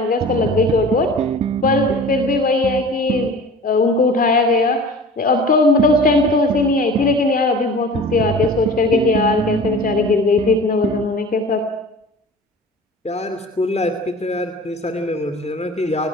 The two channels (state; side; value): normal; both; correlation 0.41